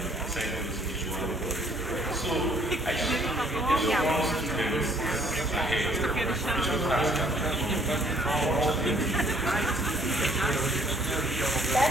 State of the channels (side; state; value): both; normal; correlation 0.61